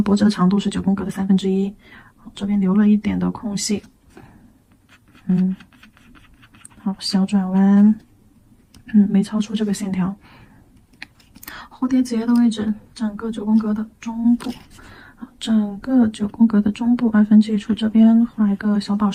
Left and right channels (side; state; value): both; identical; correlation 1.00